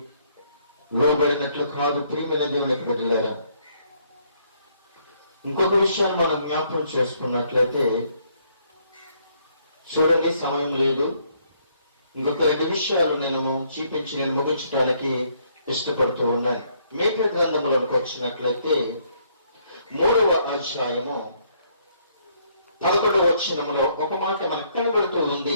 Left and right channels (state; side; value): inverted; both; correlation -0.68